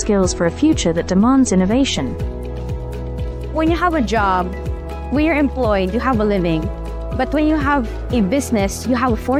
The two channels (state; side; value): identical; both; correlation 1.00